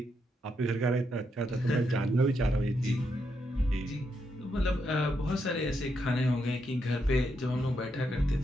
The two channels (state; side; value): normal; both; correlation 0.80